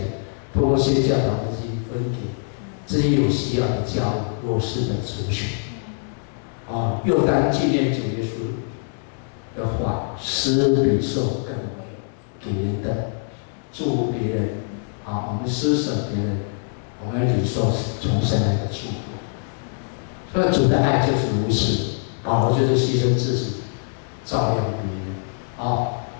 通过宣教导的去分给这些有需要的教会、弱势的族群。又当纪念主耶稣的话，施比受更为给人的祝福别人。我们施舍别人，我们领受从神来的祝福。所以主的爱就是如此，保罗就是牺牲自己，照亮别人。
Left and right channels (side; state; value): right; silent; digital silence